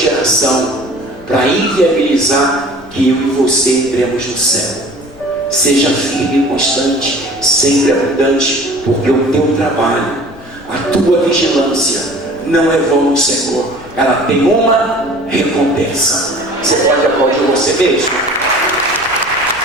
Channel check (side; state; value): left; noise; rumble, 22 dB below the sound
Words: para inviabilizar que eu e você entremos no céu. Seja firme e constante, sempre abundante, porque o teu trabalho, a tua vigilância não é vão no Senhor. Ela tem uma recompensa. Você pode aplaudir você mesmo?